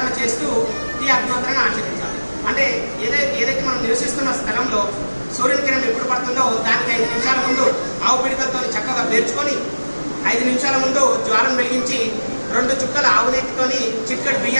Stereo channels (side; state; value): both; inverted; correlation -1.00